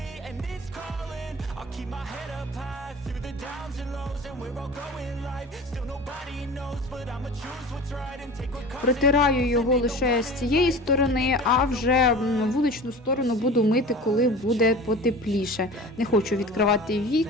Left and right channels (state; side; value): normal; both; correlation 0.37